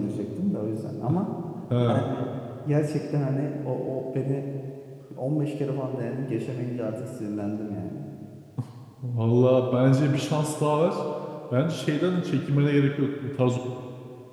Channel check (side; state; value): both; identical; correlation 1.00